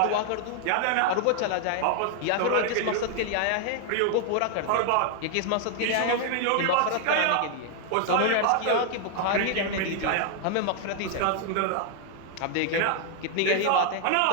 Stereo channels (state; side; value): different; both; correlation 0.00